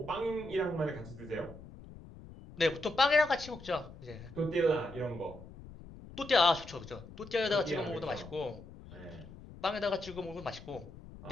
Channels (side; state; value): left; noise; rumble, 16 dB below the sound